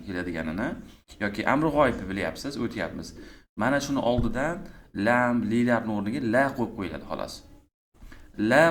keladiganini yoki amri g'oyibni bilyapsiz, o'tyapmiz. Mana shuni oldidan lam, lilarning o'rniga la qo'yib qo'yiladi xolos. La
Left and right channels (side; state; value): both; identical; correlation 1.00